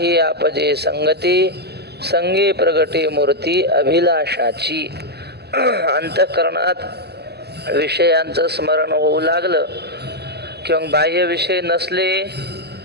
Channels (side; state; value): left; late; 0.47 ms